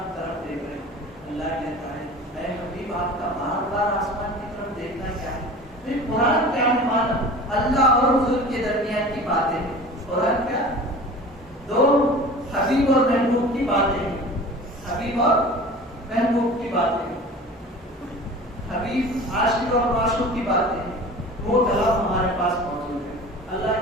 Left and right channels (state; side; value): normal; both; correlation 0.40